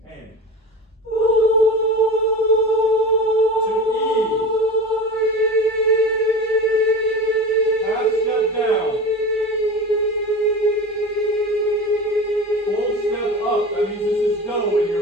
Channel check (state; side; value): normal; both; correlation 0.30